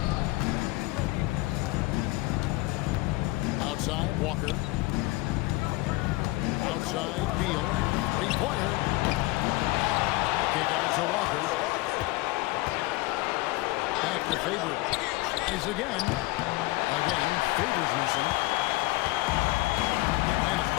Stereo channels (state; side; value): quieter; right; 21.0 dB